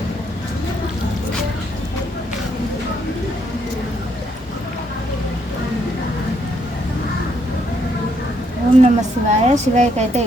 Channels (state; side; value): normal; both; correlation 0.73